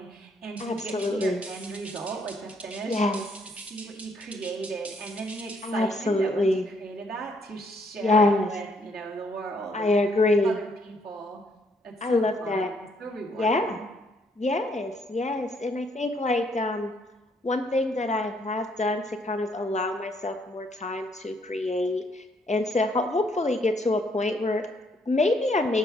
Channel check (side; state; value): both; normal; correlation 0.70